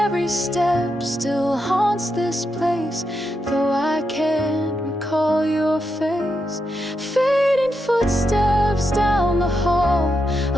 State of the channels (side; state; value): both; normal; correlation 0.84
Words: step still haunts this place, though I can't recall your face. Fading footsteps down the hall,